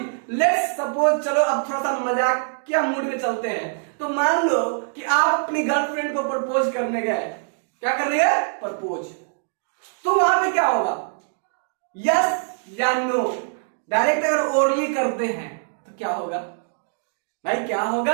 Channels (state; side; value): silent; left; digital silence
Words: लेट्स सपोज, चलो अब थोड़ा सा मजाक क्या मूड में चलते हैं, तो मान लो कि आप अपनी गर्लफ्रेंड को प्रपोज करने गए, क्या करने गए, प्रपोज, तो वहां पे क्या होगा, यस या नो। डायरेक्ट अगर ओरली करते हैं तो क्या होगा भाई, क्या